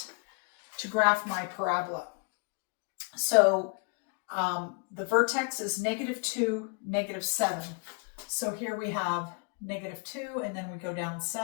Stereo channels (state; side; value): quieter; right; 34.7 dB